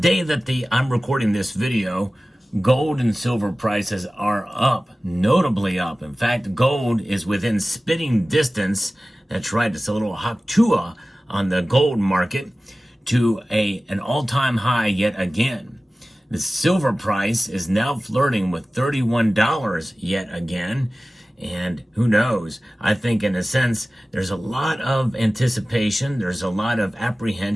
that I'm recording this video, gold and silver prices are up, notably up. In fact, gold is within spitting distance. That's right, it's a little haktua on the gold market to an all-time high yet again. The silver price is now flirting with $31 yet again. And who knows? I think in a sense, there's a lot of anticipation. There's a lot of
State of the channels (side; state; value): both; normal; correlation 0.96